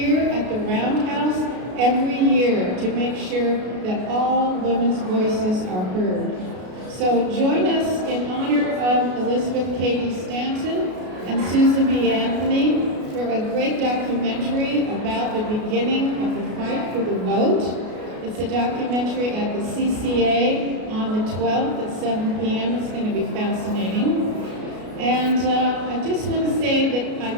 at the Roundhouse every year to make sure that all women's voices are heard. So join us in honor of Elizabeth Cady Stanton and Susan B. Anthony for a great documentary about the beginning of the fight for the vote. It's a documentary at the CCA on the 12th at 7 p.m. It's going to be fascinating. And I just want to say that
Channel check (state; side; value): late; left; 33 ms